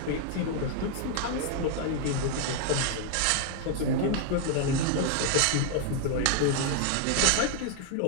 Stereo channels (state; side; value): different; both; correlation 0.00